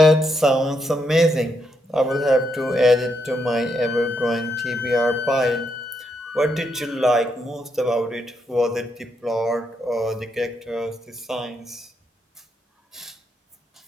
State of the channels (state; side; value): normal; both; correlation 0.79